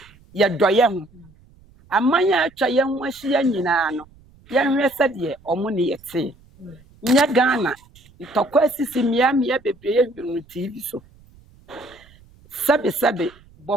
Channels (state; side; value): noise; right; rumble, 27 dB below the sound